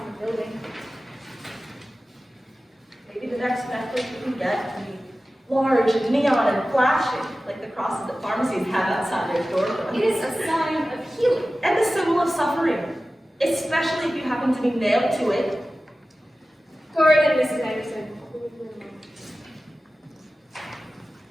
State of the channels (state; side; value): normal; both; correlation 0.95